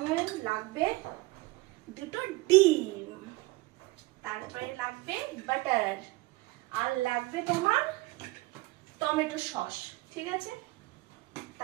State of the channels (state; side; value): quieter; left; 21.3 dB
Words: লাগবে দুটো ডিম, তারপরে লাগবে বাটার, আর লাগবে তোমার টমেটো সস, ঠিক আছে।